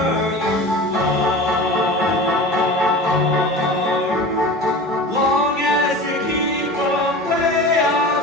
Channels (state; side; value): normal; both; correlation 0.34